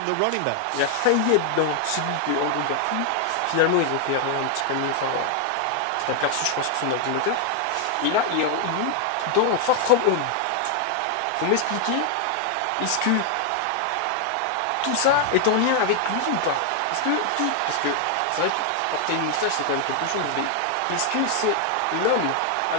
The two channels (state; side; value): different; both; correlation 0.00